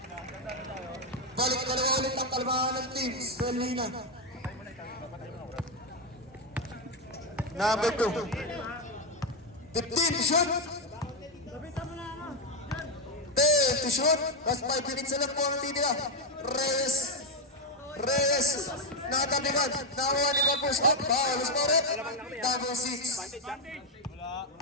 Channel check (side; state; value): both; normal; correlation 0.06